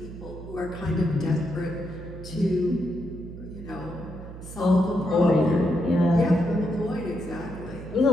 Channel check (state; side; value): noise; right; hum, 13 dB below the sound